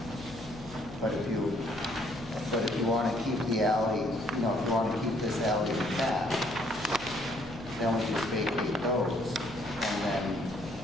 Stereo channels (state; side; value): noise; left; hum, 18 dB below the sound